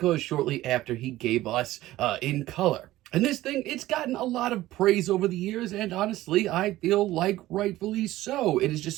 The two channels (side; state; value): left; quieter; 16.0 dB